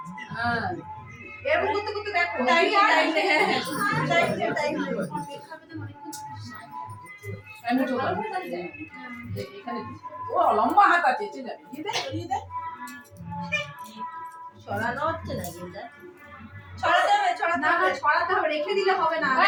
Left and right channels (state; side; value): identical; both; correlation 1.00